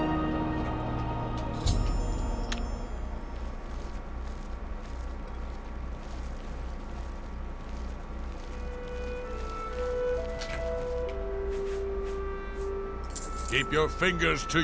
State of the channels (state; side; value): identical; both; correlation 1.00